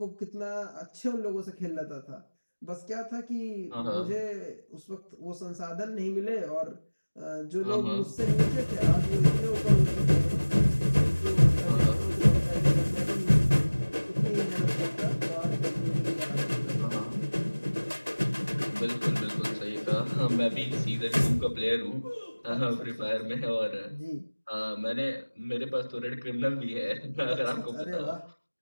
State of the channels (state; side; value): inverted; both; correlation -1.00